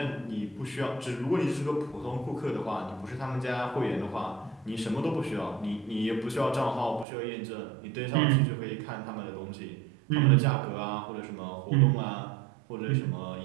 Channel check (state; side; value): drops out; left; at 7.1 s